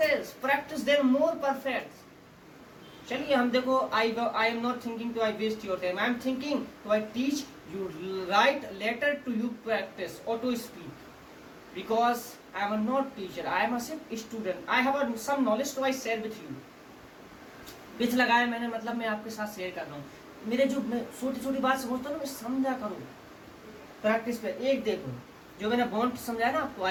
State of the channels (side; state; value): both; identical; correlation 1.00